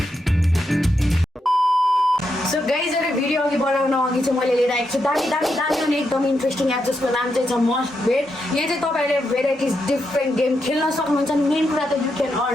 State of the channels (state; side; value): normal; both; correlation 0.83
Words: guys, एउटा video अघि बनाउन अघि चाहिँ मैले लिएर आएको छु दामी दामी दामी अनि एकदम इन्ट्रेस्टिङ एप जसको नाम चाहिँ छ मस्ट बेट। यहाँ चाहिँ तपाईँहरूले भेराइटिज डिफ्रेन्ट गेम खेल्न सक्नुहुन्छ। मेन कुरा त यु क्यान